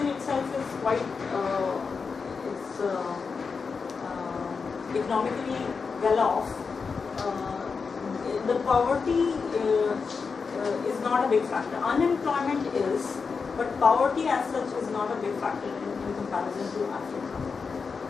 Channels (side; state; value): right; quieter; 5.2 dB